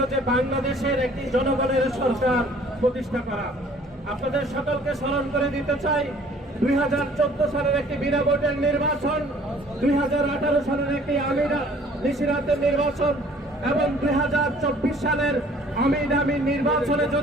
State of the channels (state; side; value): normal; both; correlation 0.54